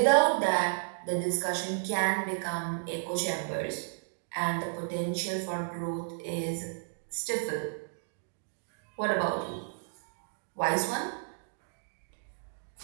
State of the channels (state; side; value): silent; left; digital silence